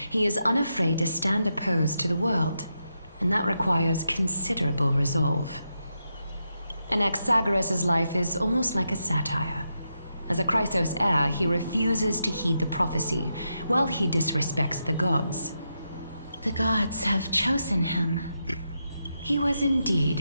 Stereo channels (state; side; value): inverted; both; correlation -0.85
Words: he is unafraid to stand opposed to the world, and that requires considerable resolve. Anaxagoras' life is almost like a satire. As a Chrysos heir, he refuses to heed the prophecy, while he disrespects the gods. The gods have chosen him. He was